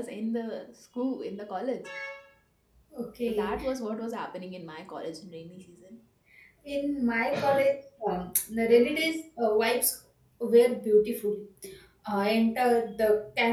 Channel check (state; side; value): identical; both; correlation 1.00